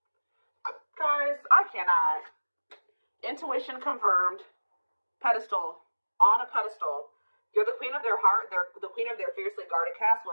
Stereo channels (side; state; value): both; inverted; correlation -1.00